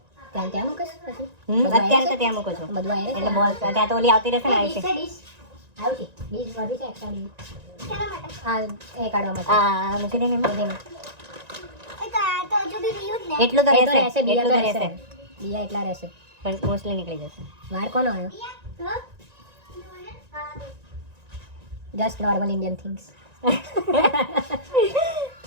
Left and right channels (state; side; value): late; left; 1.9 ms